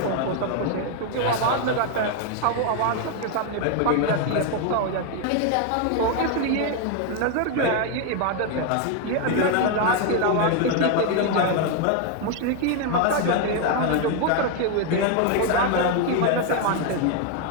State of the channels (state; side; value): different; both; correlation 0.01